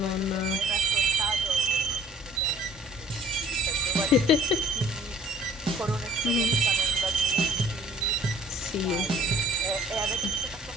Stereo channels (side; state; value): both; normal; correlation 0.56